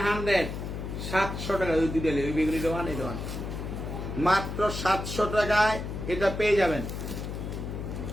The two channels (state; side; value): noise; left; hum, 6 dB below the sound